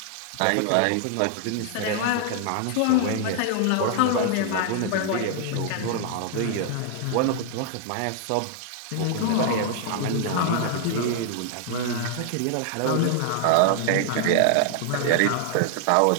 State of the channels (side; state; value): both; different; correlation 0.00